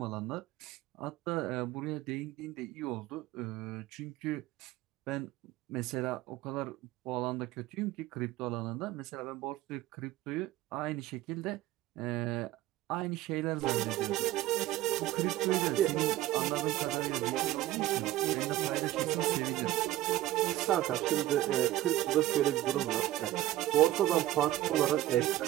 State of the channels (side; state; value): left; quieter; 15.2 dB